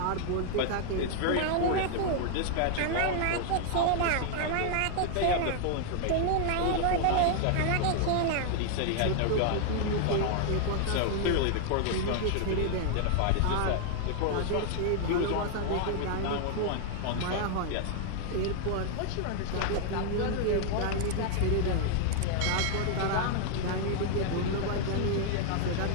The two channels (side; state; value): both; different; correlation 0.00